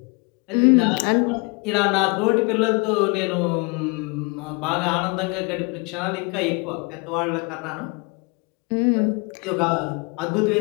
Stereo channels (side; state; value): right; quieter; 29.9 dB